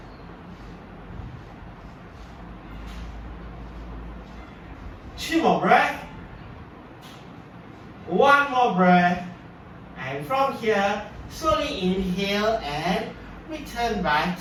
Two more breaths. 1 more breath. And from here, slowly inhale and return back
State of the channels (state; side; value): identical; both; correlation 1.00